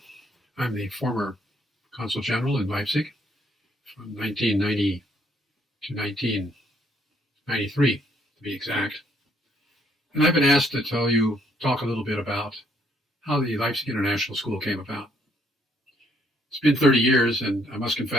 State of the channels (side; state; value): both; normal; correlation 0.68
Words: I'm the former Consul General in Leipzig from 1990 to 1993, to be exact. And I've been asked to talk a little bit about how the Leipzig International School came about. It's been 30 years, and I must